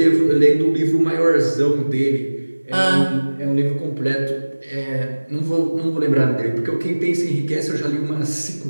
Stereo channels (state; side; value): inverted; both; correlation -1.00